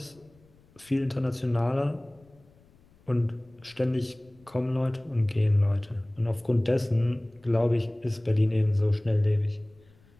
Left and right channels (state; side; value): noise; left; rumble, 30 dB below the sound